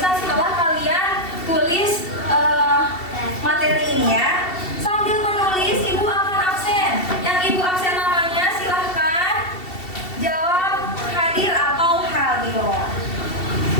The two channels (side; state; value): right; late; 2.7 ms